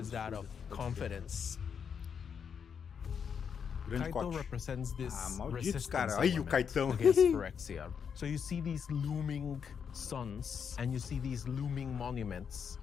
is that of absurdo. confidence. Grande Kaito Koch. represents this malditos, resistance cara. Ai, o element Kaitão. against Phyrexia. So you see these looming suns and you see these looming monuments,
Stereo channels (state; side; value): quieter; right; 7.0 dB